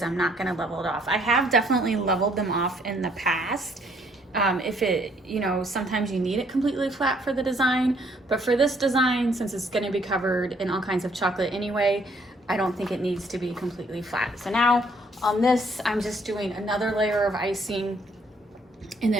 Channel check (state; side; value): normal; both; correlation 0.65